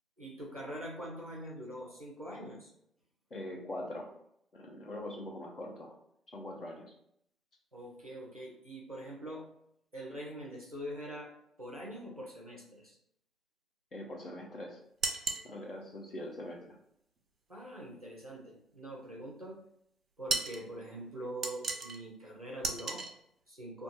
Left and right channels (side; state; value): both; normal; correlation 0.59